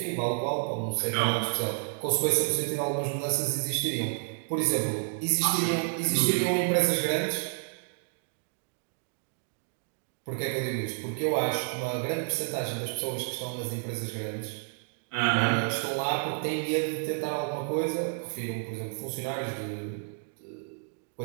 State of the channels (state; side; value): silent; left; digital silence